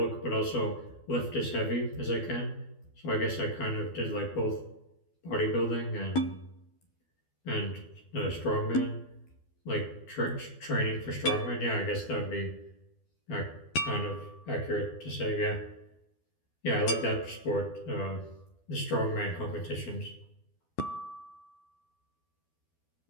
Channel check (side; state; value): right; late; 12 ms